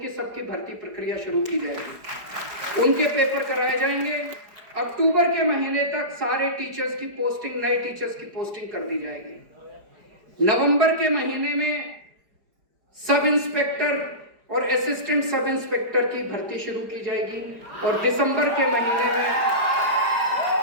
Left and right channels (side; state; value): left; late; 4.8 ms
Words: सबकी भर्ती प्रक्रिया शुरू की जाएगी, उनके पेपर कराए जाएंगे। अक्टूबर के महीने तक सारे टीचर्स की पोस्टिंग, नए टीचर्स की पोस्टिंग कर दी जाएगी। नवंबर के महीने में सब इंस्पेक्टर और असिस्टेंट सब इंस्पेक्टर की भर्ती शुरू की जाएगी और दिसंबर के